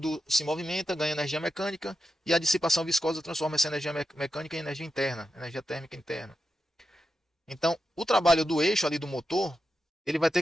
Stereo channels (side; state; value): both; normal; correlation 0.88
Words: se movimenta, ganha energia mecânica e a dissipação viscosa transforma essa energia mecânica em energia interna, energia térmica interna. Então, o trabalho do eixo ali do motor, ele vai ter